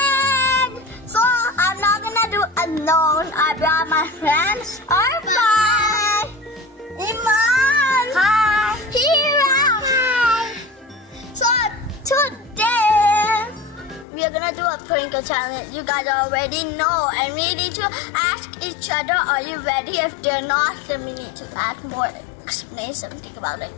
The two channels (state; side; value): drops out; right; at 14.1 s